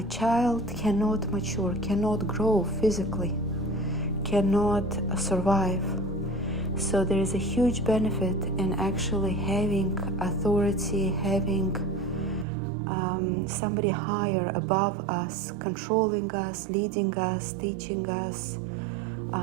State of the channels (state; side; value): drops out; left; at 12.5 s